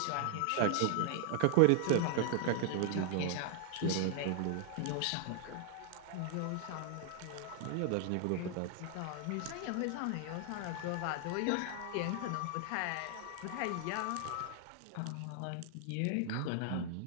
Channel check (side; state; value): both; different; correlation 0.00